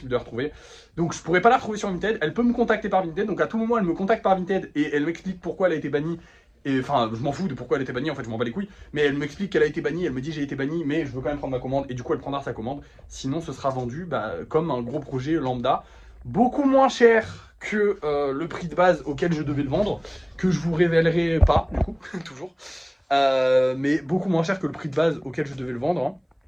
de la retrouver. Donc je pourrais pas la retrouver sur Vinted, elle peut me contacter par Vinted, donc à tout moment elle me contacte par Vinted et elle m'explique pourquoi elle a été bannie. Et enfin, je m'en fous de pourquoi elle a été bannie, en fait, je m'en bats les couilles. Mais elle m'explique qu'elle a été bannie, elle me dit j'ai été bannie, mais je veux quand même prendre ma commande. Et du coup, elle prendra sa commande. Sinon, ce sera vendu comme un gros projet lambda. Beaucoup moins cher que le prix de base auquel je devais le vendre. Que je vous révélerai pas, du coup, toujours. Mais beaucoup moins cher que le prix de base auquel je devais le vendre. Hein.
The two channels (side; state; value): both; identical; correlation 1.00